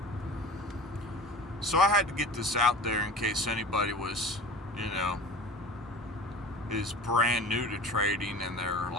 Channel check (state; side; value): normal; both; correlation 0.38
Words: So I had to get this out there in case anybody was, you know, is brand new to trading, and they're